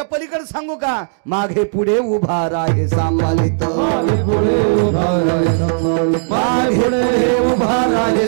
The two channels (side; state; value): left; silent; digital silence